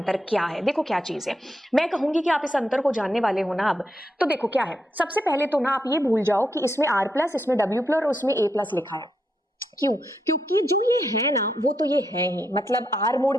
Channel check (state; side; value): normal; both; correlation 0.81